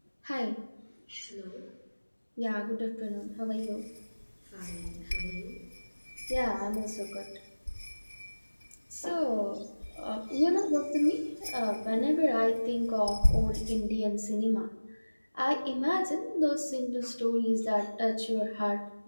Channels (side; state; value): both; inverted; correlation -1.00